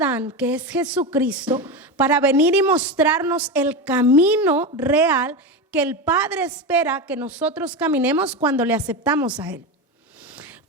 que es Jesucristo, para venir y mostrarnos el camino real que el Padre espera que nosotros caminemos cuando le aceptamos a Él.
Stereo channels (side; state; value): both; normal; correlation 0.18